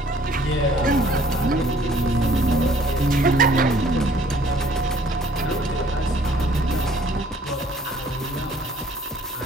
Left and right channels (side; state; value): both; normal; correlation 0.57